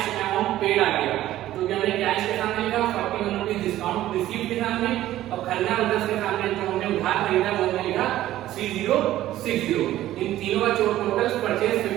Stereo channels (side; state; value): left; quieter; 14.0 dB